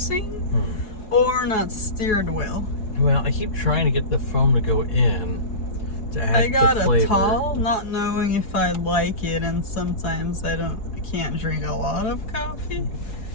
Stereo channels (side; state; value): right; late; 4.7 ms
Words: or not steered well. Well, I keep trying to get the foam to go in to add I got the flavor. a tall, not knowing if I'd like it, and sometimes I can't drink a lot of coffee.